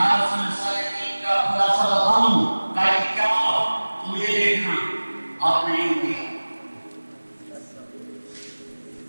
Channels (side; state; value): both; inverted; correlation -1.00